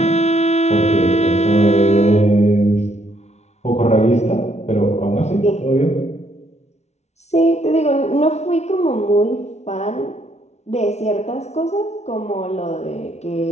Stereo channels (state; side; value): late; right; 0.32 ms